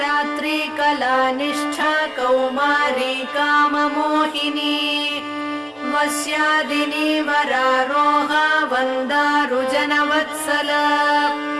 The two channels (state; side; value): identical; both; correlation 1.00